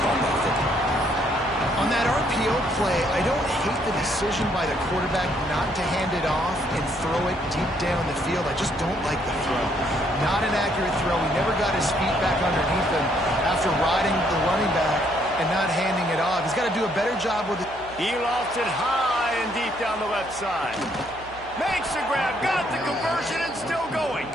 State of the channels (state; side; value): noise; right; hum, 20 dB below the sound